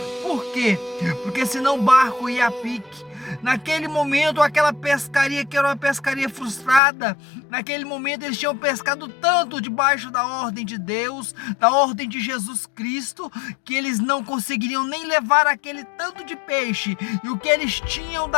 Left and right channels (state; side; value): drops out; right; at 6.8 s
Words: Por quê? Porque senão o barco ia a pique. Naquele momento, aquela pescaria que era uma pescaria frustrada, naquele momento eles tinham pescado tanto debaixo da ordem de Deus, da ordem de Jesus Cristo, que eles não conseguiriam nem levar aquele tanto de peixe, e o que eles tinham